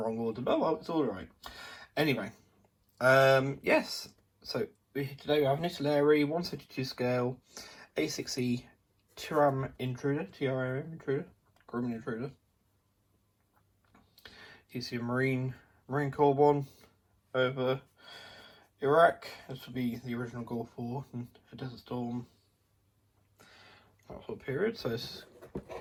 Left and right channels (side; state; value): both; identical; correlation 1.00